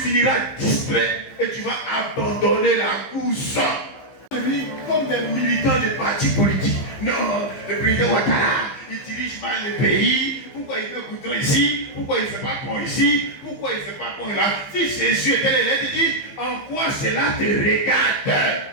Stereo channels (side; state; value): right; late; 15 ms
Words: distrait et tu vas abandonner la course. Comme des militants de partis politiques. Non, le président Ouattara, il dirige mal le pays. Pourquoi il fait goudron ici? Pourquoi il ne fait pas pont ici? Pourquoi il ne fait pas pont là? Si Jésus était là, il dit, en quoi cela te regarde?